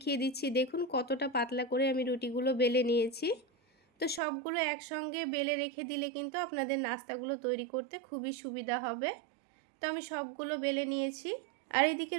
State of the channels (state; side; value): drops out; left; at 4.2 s